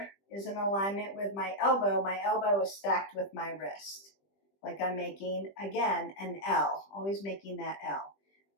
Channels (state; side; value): late; right; 20 ms